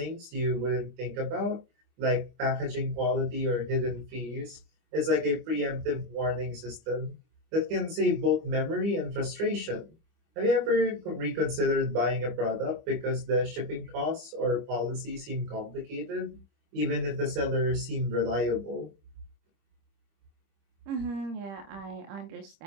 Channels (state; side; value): late; left; 24 ms